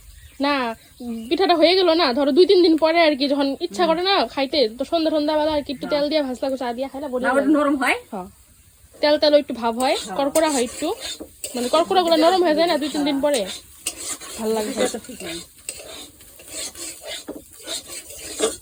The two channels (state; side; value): identical; both; correlation 1.00